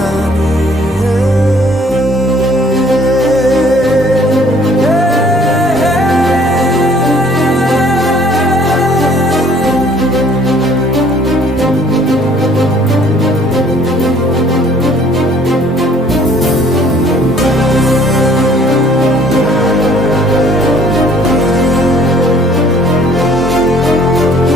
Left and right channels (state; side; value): normal; both; correlation 0.58